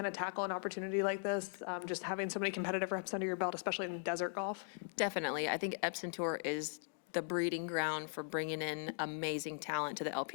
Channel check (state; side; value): silent; right; digital silence